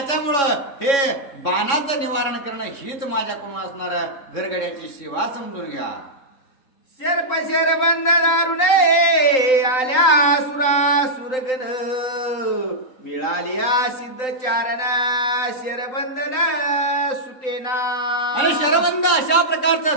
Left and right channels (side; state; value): right; late; 3.9 ms